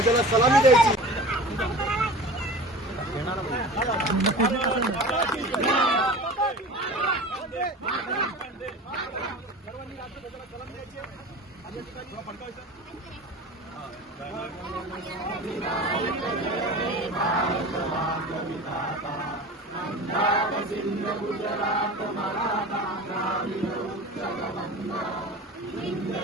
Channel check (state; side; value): normal; both; correlation 0.36